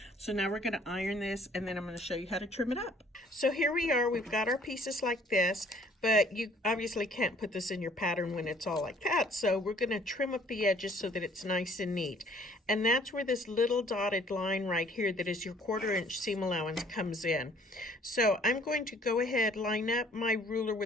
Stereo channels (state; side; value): normal; both; correlation 0.58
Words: So now we're going to iron this, and then I'm going to show you how to trim it up. So here we are, we've got our pieces like this, but you obviously can't put this in your pattern when it's all like that. So we're going to trim up the edges so that it's nice and neat. And that's where this little dotted line right here that is your 1/4 inch seam allowance comes in. So I'm going to go ahead, line up my ruler